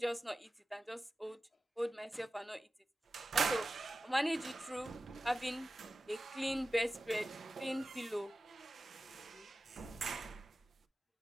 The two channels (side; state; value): both; normal; correlation 0.94